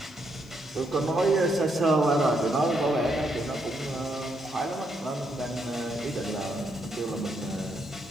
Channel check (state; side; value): noise; left; hiss, 29 dB below the sound